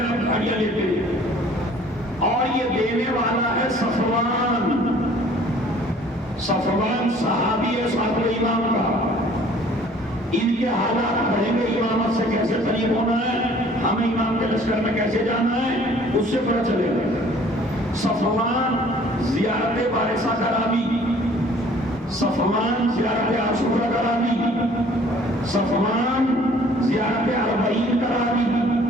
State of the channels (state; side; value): normal; both; correlation 0.54